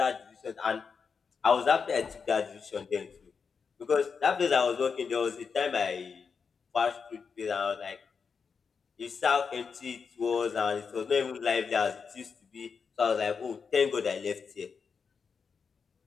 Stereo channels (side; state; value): right; quieter; 5.7 dB